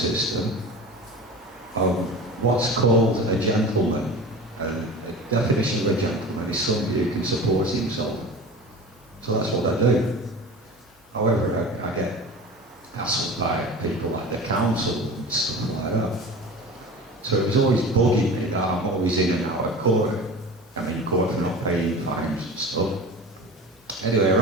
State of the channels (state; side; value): normal; both; correlation 0.35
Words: What's called a gentleman, and the definition of a gentleman is somebody who can support himself. So that's what I do. However, I get hassled by people like the council and stuff like that. So it was always bugging me that I'm always in and out of court. I'm in court for not paying fines and stuff. Anyway,